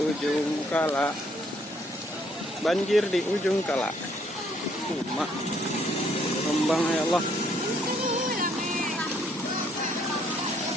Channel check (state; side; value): normal; both; correlation 0.67